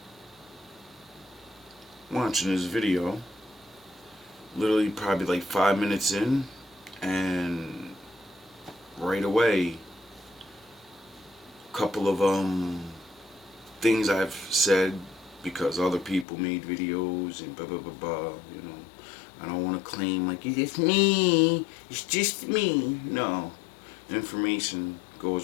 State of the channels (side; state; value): right; drops out; at 16.2 s